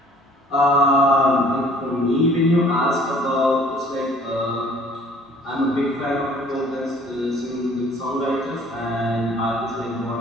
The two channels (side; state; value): both; normal; correlation 0.54